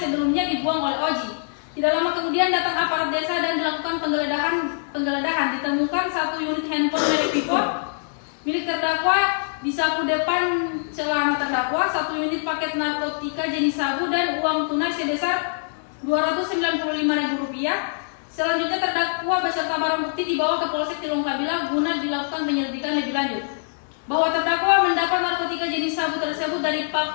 dibuang oleh Oji. Tidak lama kemudian datang aparat desa dan dilakukan penggeledahan. Ditemukan 1 unit handphone merek Vivo milik terdakwa di saku depan celana terdakwa, 1 unit paket narkotika jenis sabu dan uang tunai sebesar Rp295.000. Selanjutnya terdakwa beserta barang bukti dibawa ke Polsek Tilongkabila guna dilakukan penyelidikan lebih lanjut. Bahwa terdakwa mendapat narkotika jenis sabu tersebut dari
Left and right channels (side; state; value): right; silent; digital silence